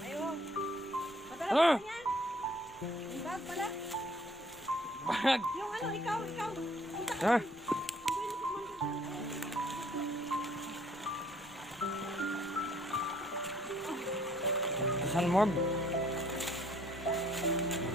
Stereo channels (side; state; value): left; noise; rumble, 26 dB below the sound